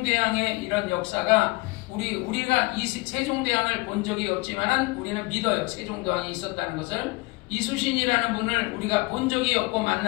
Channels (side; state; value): right; quieter; 24.0 dB